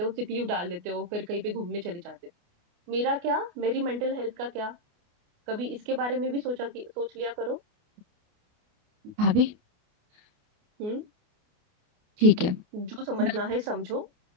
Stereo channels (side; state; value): left; late; 29 ms